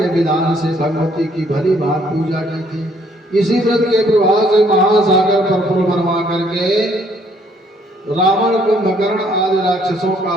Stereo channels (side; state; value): both; normal; correlation 0.65